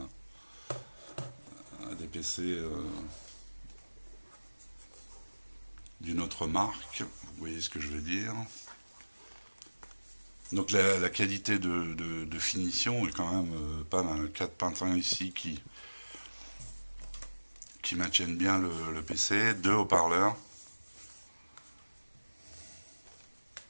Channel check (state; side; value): inverted; both; correlation -1.00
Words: des PC d'une autre marque, vous voyez ce que je veux dire. Donc la qualité de finition est quand même pas mal. 4 pintins ici qui maintiennent bien le PC, 2 haut-parleurs.